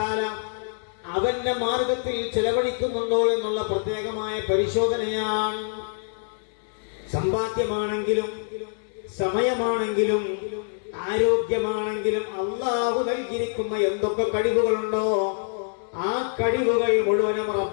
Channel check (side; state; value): right; silent; digital silence